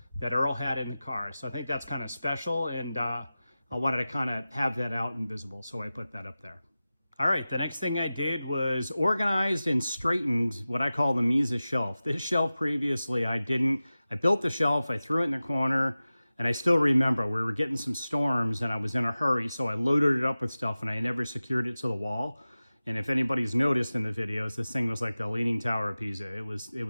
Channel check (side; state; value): both; inverted; correlation -0.96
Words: that Earl had in the car. So I think that's kind of special, and I wanted to kind of have that out and visible, so I put that up there. All right, the next thing I did was organized and straightened what I call the Misa shelf. This shelf previously I built the shelf, I threw it in the corner, and I still remember we were getting some storms and I was in a hurry, so I loaded it up with stuff and I never secured it to the wall. And if anybody's noticed in the videos, this thing was like the Leaning Tower of Pisa. It was